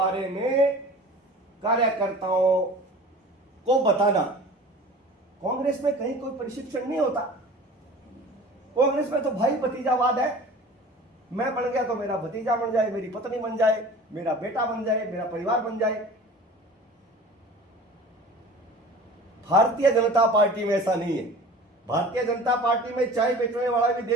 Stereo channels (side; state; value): both; normal; correlation 0.41